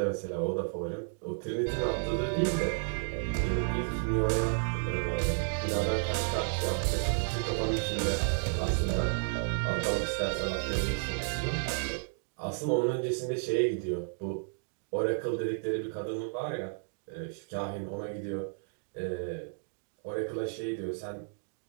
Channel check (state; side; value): silent; left; digital silence